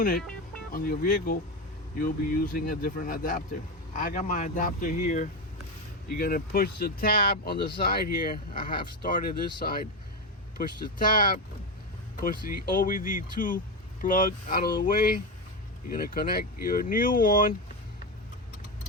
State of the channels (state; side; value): normal; both; correlation 0.15